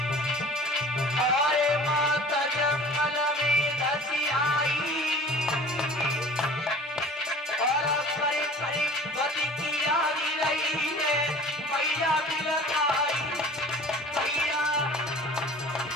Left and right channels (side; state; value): both; normal; correlation 0.44